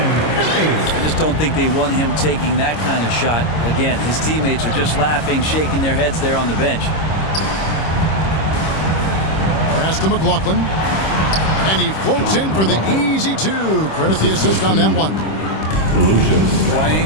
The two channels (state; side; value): late; right; 26 ms